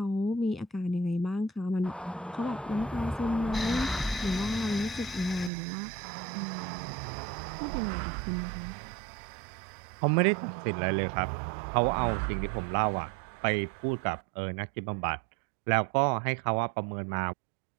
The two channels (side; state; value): left; drops out; at 5.5 s